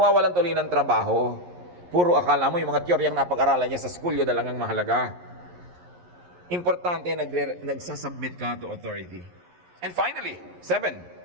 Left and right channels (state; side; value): late; left; 11 ms